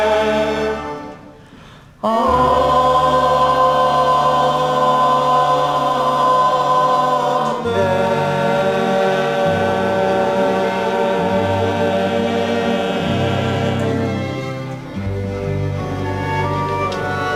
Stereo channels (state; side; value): identical; both; correlation 1.00